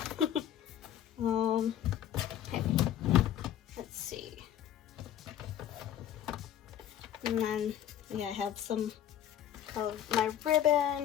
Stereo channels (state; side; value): quieter; right; 10.7 dB